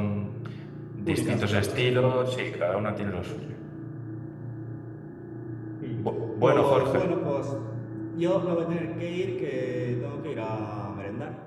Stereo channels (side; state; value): both; identical; correlation 1.00